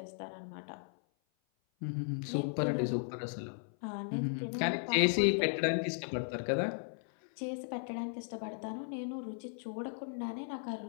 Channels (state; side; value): silent; right; 54 dB below the other